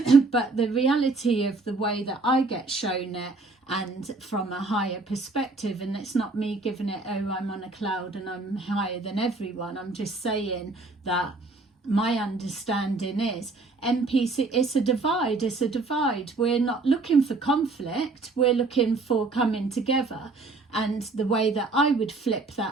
But the reality of the way that I get shown it, and from a higher perspective, and it's not me giving it, oh, I'm on a cloud and I'm higher than everyone. I'm just saying that my understanding is NPC, it's a divide. We're not looking for conflict, we're looking for coming together. And the way that I would flip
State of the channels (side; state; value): left; quieter; 3.5 dB